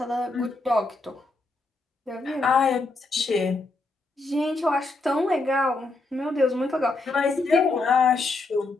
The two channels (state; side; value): quieter; right; 3.3 dB